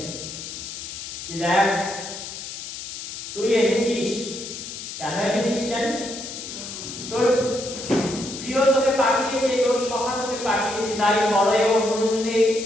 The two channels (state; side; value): noise; left; hiss, 9 dB below the sound